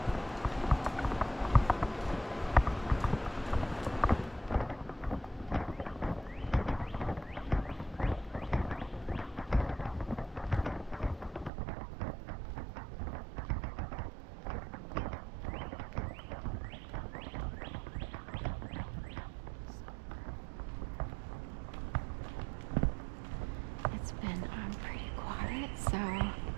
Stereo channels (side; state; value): left; drops out; at 11.5 s